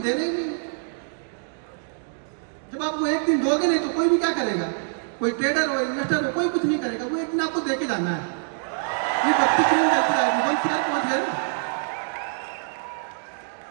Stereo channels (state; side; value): silent; left; digital silence